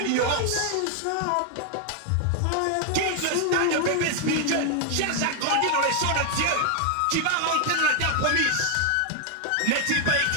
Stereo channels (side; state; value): both; different; correlation 0.00